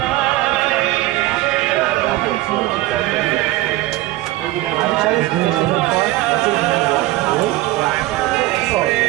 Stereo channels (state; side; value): quieter; left; 17.5 dB